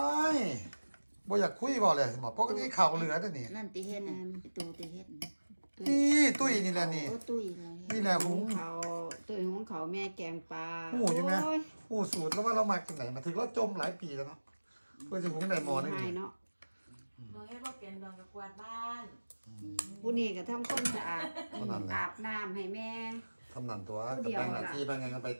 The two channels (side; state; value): both; inverted; correlation -1.00